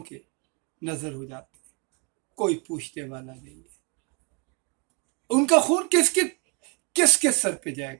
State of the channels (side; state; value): left; quieter; 32.4 dB